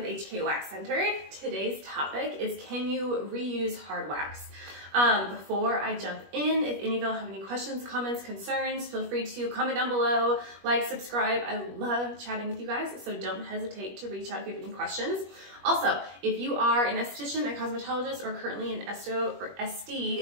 HK Wax Center. Today's topic is, can you reuse hard wax? Before I jump in, if any of y'all have any questions, comments, concerns, feel free to comment down below, like, subscribe. I love chatting with you guys, so don't hesitate to reach out if you have any questions. Also, if you are an esthetician, a cosmetologist, or currently in esto or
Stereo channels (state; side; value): late; left; 21 ms